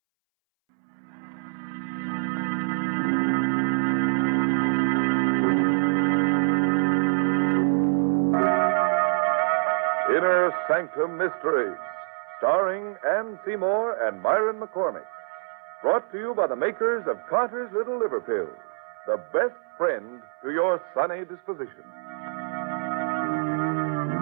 Innersanctum Mysteries, starring Ann Seymour and Myron McCormick. Brought to you by the makers of Carter's Little Liver Pills, the best friend to your sunny disposition.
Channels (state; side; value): silent; left; 61 dB below the other